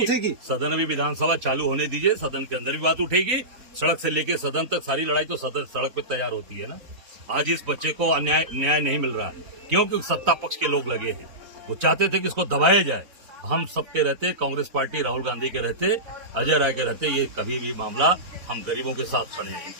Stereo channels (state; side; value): late; left; 4.0 ms